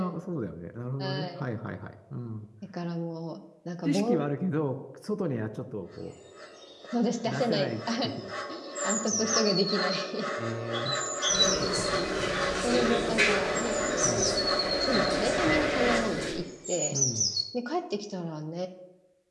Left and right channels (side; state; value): both; identical; correlation 1.00